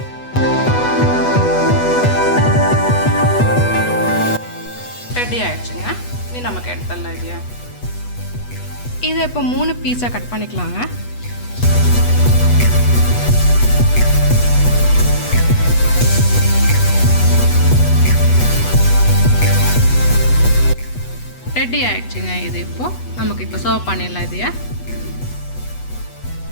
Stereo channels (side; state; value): right; late; 8.2 ms